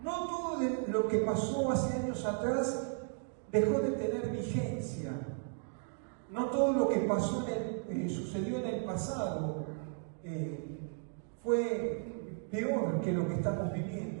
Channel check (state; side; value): silent; left; 54 dB below the other